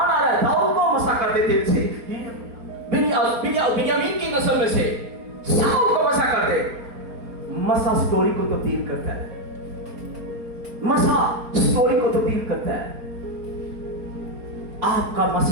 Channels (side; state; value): left; late; 4.3 ms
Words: है, दाऊद को मसा कर दे तेल से, बिन्यामीन की नस्ल में से साउल को मसा कर दे। मसा स्टोरी को तब्दील करता है, मसा स्टोरी को तब्दील करता है। आपका